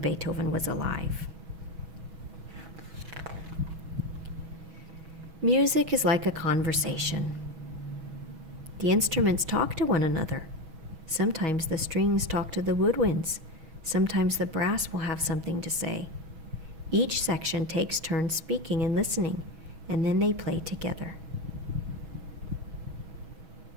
was alive. Music is like a conversation. The instruments talk to one another. Sometimes the strings talk to the woodwinds. Sometimes the brass will have something to say. Each section takes turns speaking and listening, and then they play together.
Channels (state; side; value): late; left; 6.2 ms